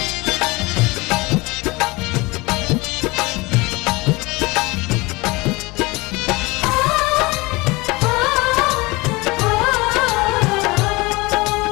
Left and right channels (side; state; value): right; quieter; 23.5 dB